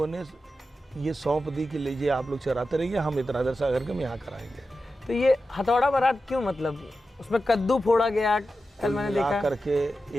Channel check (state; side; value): normal; both; correlation 0.91